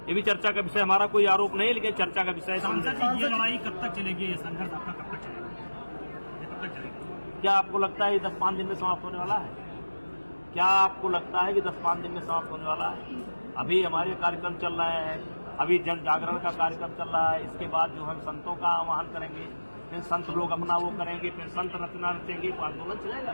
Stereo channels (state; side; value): inverted; both; correlation -1.00